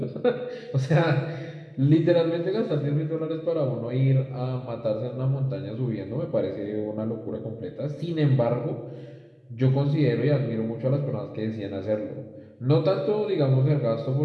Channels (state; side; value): identical; both; correlation 1.00